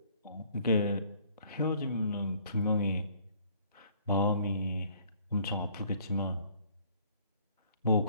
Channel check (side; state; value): both; inverted; correlation -0.59